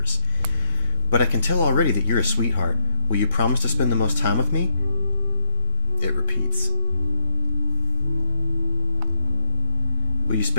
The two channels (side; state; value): both; inverted; correlation -0.39